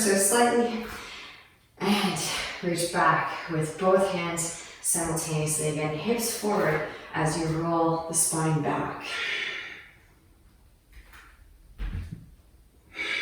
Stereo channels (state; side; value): identical; both; correlation 1.00